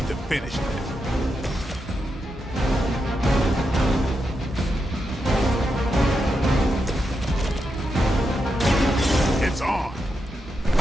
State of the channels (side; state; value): both; normal; correlation 0.85